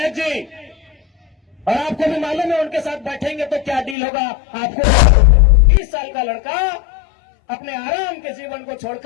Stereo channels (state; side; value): drops out; right; at 4.0 s